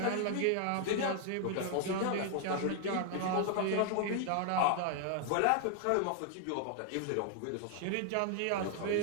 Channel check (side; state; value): both; different; correlation 0.00